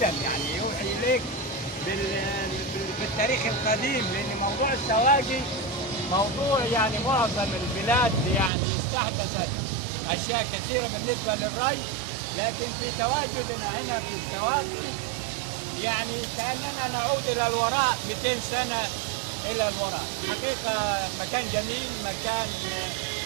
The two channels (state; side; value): drops out; left; at 8.5 s